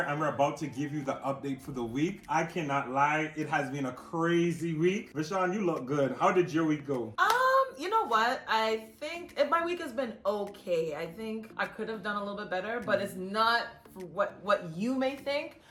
and we're about to give you the update for the week. I cannot lie, it has been a crazy week. Vishaun, you look good. How did your week go? You know what? I think my week has been okay. I think I could have done a little bit better, but it's not what you may think.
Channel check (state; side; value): identical; both; correlation 1.00